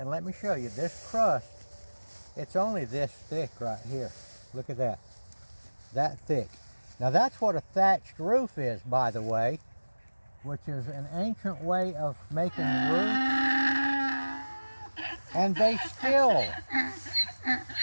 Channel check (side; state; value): both; inverted; correlation -1.00